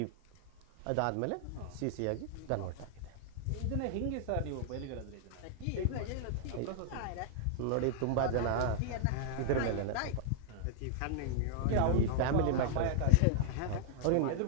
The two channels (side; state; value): both; different; correlation -0.01